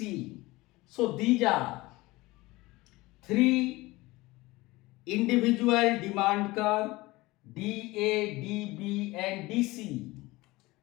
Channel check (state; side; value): quieter; right; 20.7 dB